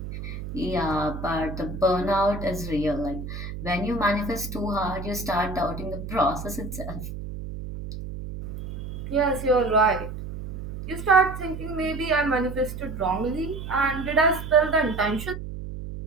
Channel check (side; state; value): right; noise; hum, 8 dB below the sound